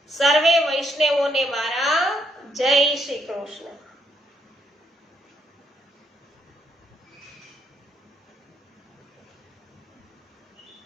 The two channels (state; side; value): normal; both; correlation 0.74